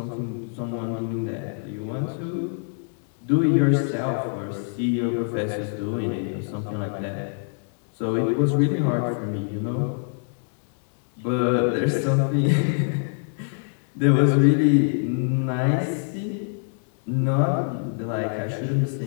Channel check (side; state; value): right; silent; 62 dB below the other